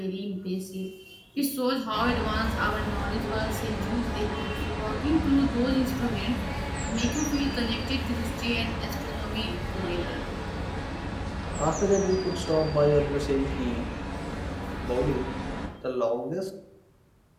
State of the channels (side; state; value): both; identical; correlation 1.00